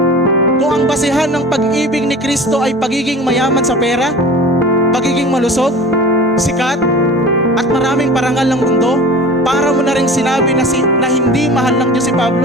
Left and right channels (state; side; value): normal; both; correlation 0.38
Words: Kung ang basehan ng pag-ibig ni Kristo ay pagiging mayaman sa pera, pagiging malusog, sikat, at maraming parangal ng mundo, para mo na rin sinabi na hindi mahal ng Diyos si